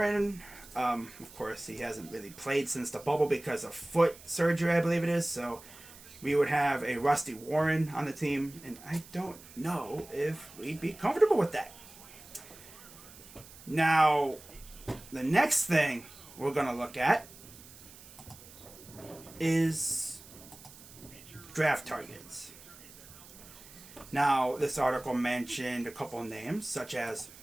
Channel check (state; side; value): noise; right; hiss, 19 dB below the sound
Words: of course, he hasn't really played since the bubble because of foot surgery, I believe it is. So we would have a rusty Warren on the team, and I don't know if we'd be comfortable with that. Now, the next thing we're going to look at is draft targets. Now, this article mentioned a couple of names, such as